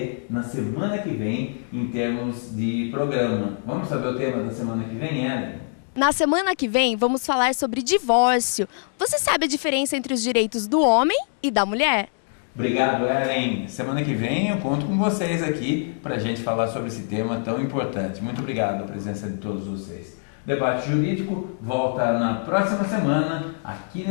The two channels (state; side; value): silent; right; digital silence